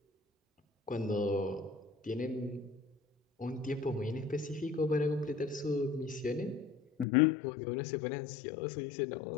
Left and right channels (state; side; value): drops out; right; at 7.1 s